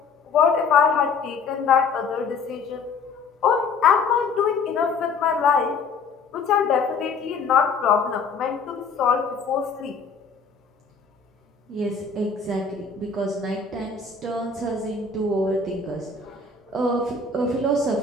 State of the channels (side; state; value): right; quieter; 4.8 dB